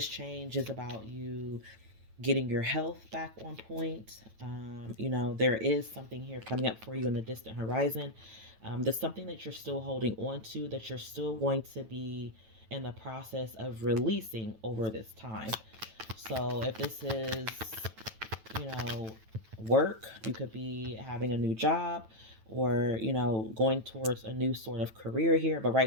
change is about you getting your health back on point. There is something here coming up for you in the distant horizon. There's something that you're still holding on to, that you're still going to be in the process of releasing over this time. So if this is, work, you could be having a new job, or, going towards a new sort of career here. But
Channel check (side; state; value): left; late; 9.1 ms